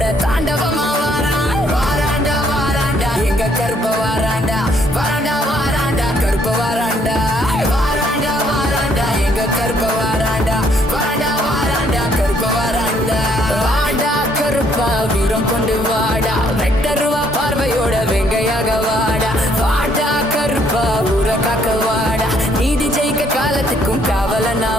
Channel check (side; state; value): both; normal; correlation 0.67